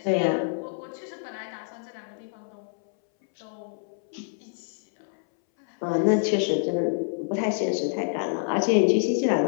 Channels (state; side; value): silent; right; 60 dB below the other